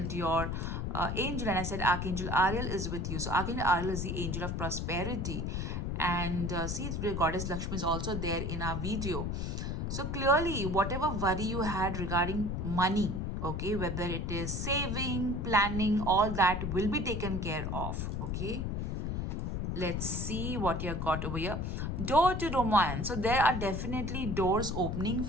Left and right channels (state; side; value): noise; left; rumble, 2 dB below the sound